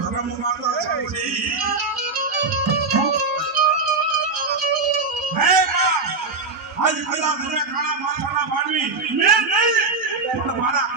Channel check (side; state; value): left; quieter; 4.0 dB